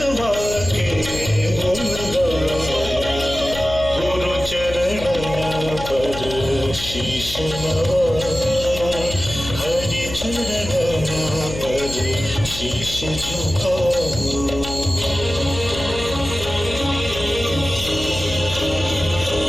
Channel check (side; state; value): left; noise; hum, 10 dB below the sound